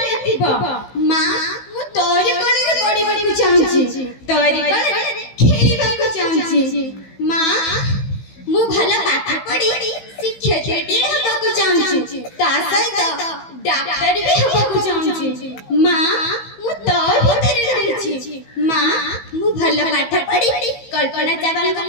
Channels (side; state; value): right; late; 15 ms